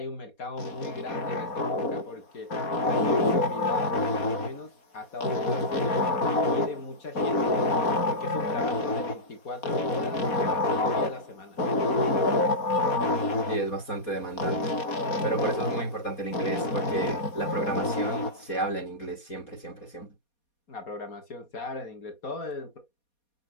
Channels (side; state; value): right; late; 4.2 ms